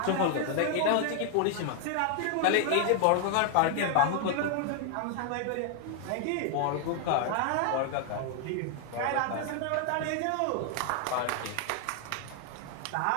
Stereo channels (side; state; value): both; different; correlation 0.00